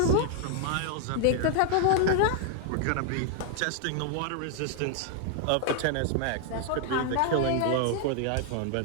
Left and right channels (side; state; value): both; different; correlation 0.00